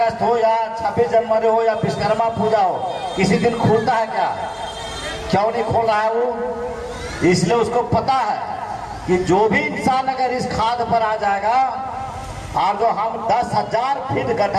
हो या 26 जनवरी हो या विश्वकर्मा पूजा हो, किसी दिन खुलता है क्या? क्यों नहीं खोल रहा है वो? इसलिए उसको पता है कि जो भी इंसान अगर इस खाद पर आ जाएगा और जो हम 10,000 फीट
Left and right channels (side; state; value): both; identical; correlation 1.00